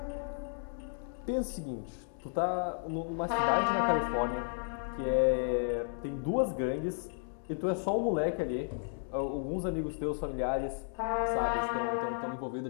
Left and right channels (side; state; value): right; silent; digital silence